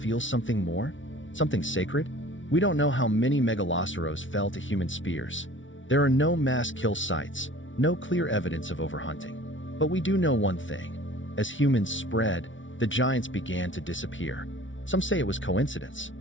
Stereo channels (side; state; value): right; late; 0.56 ms